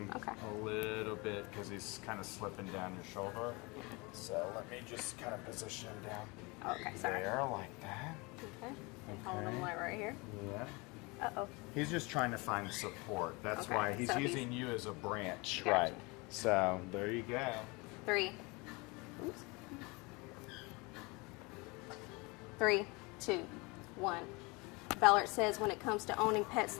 Okay. a little bit because he's kind of slipping down your shoulder. So let me just kind of position him down Okay, sorry. there like that. Okay. Hold him like right here. Yeah. Uh-oh. He's just trying to find support. That's Okay, why he's so he's- using you as a branch, Gotcha. right? So there you go. 3. Oops. 3, 2, 1. Ballard says when it comes to owning pets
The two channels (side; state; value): right; quieter; 26.8 dB